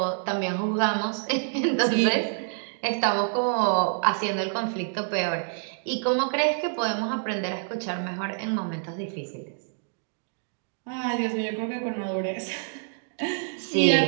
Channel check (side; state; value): left; silent; digital silence